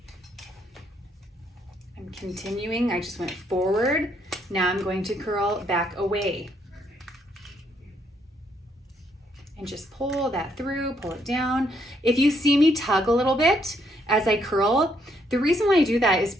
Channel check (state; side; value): normal; both; correlation 0.72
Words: I'm continuing. I just went forward. Now I'm going to curl back away. And just pull that through, pull it down. If you see me tug a little bit as I curl, the reason why I do that is